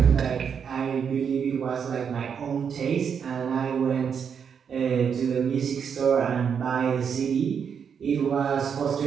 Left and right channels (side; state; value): left; quieter; 7.1 dB